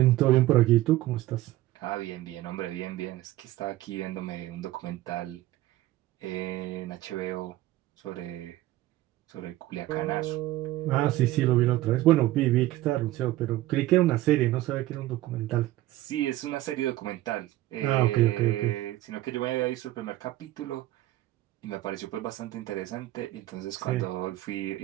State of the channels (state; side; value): quieter; left; 16.0 dB